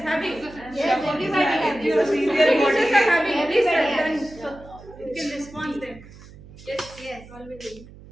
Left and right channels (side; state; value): right; noise; hum, 20 dB below the sound